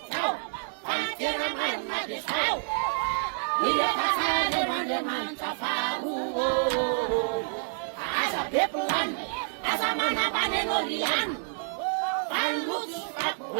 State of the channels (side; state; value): left; silent; digital silence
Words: tau Pantera man madisau Ile pasade mande man kafaru Asa pepuan Asa mana pane norian Panlutu